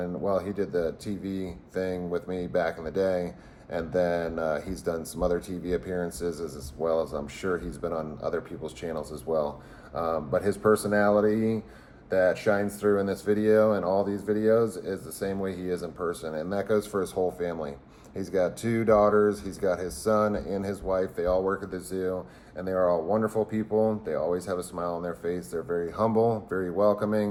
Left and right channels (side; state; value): both; identical; correlation 1.00